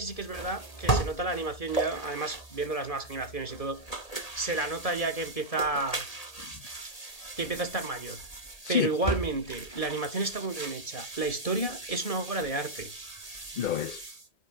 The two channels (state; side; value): late; right; 1.8 ms